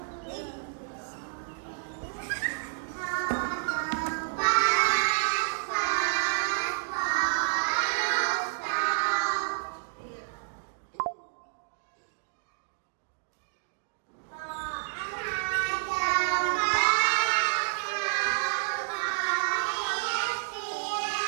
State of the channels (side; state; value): left; silent; digital silence